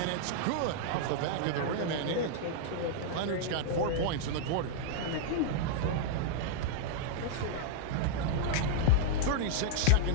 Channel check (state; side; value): different; both; correlation -0.01